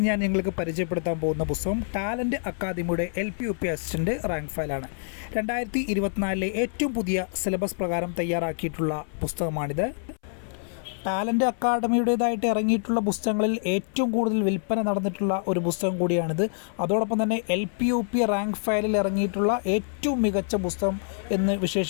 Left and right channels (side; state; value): right; silent; 61 dB below the other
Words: ഞാൻ നിങ്ങൾക്ക് പരിചയപ്പെടുത്താൻ പോകുന്ന പുസ്തകം ടാലൻറ്റ് അക്കാദമിയുടെ LP-UP അസിസ്റ്റൻ്റ് റാങ്ക് ഫയലാണ്. 2024 ഏറ്റവും പുതിയ സിലബസ് പ്രകാരം തയ്യാറാക്കിയിട്ടുള്ള പുസ്തകമാണിത്. ടാലൻറ്റ് അക്കാദമിയുടേതായിട്ട് ഇറങ്ങിയിട്ടുള്ള പുസ്തകങ്ങളിൽ ഏറ്റവും കൂടുതൽ വിൽപ്പന നടന്നിട്ടുള്ള ഒരു പുസ്തകം കൂടിയാണിത്. അതോടൊപ്പം തന്നെ LP-UP റാങ്ക് ഫയലിൽ ഇറങ്ങിയിട്ടുള്ള ഏറ്റവും മികച്ച പുസ്തകം എന്ന്